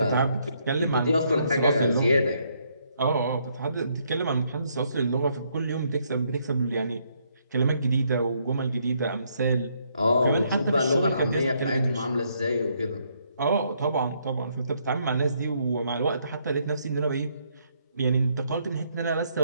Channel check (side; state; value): both; inverted; correlation -0.72